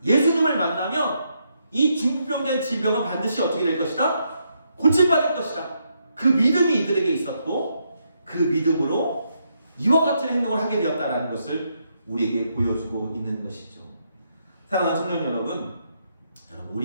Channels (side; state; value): both; inverted; correlation -0.78